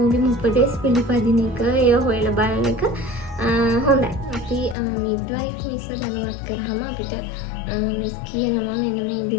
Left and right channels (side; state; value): right; drops out; at 4.8 s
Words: උපදෙස් පිළිපදින එක ඒව හොයලා බලන එක හොඳයි. අපි මිඩ්වයිෆ් මිස්ව දැනුවත් කරාම අපිට මිස් කියනවා මෙන්න මේ